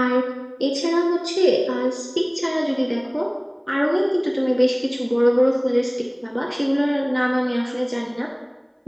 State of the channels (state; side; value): identical; both; correlation 1.00